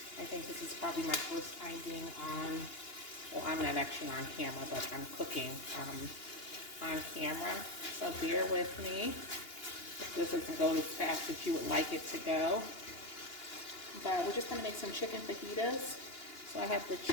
I think this is probably my first time being on, well, I'm not actually on camera, but I'm cooking on camera. So bear with me if this doesn't go as fast as you would like it to go. But we're just going to make some chicken fajitas. So I have the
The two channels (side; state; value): right; late; 2.9 ms